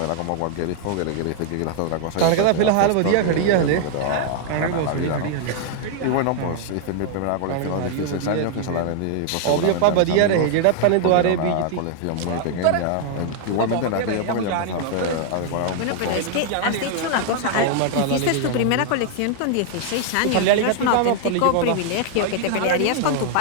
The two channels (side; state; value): both; different; correlation -0.01